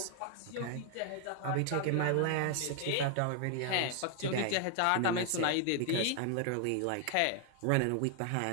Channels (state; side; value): different; both; correlation 0.00